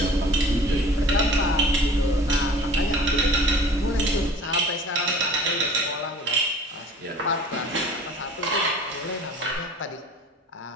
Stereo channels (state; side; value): normal; both; correlation 0.46